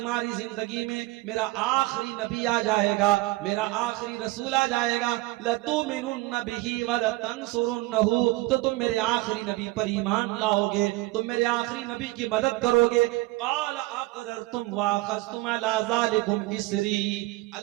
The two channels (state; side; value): quieter; left; 20.1 dB